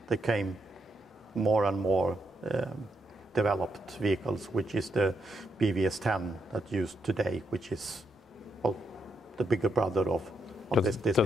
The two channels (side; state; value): both; normal; correlation 0.80